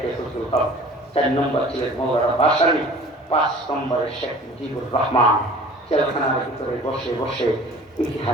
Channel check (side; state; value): both; normal; correlation 0.46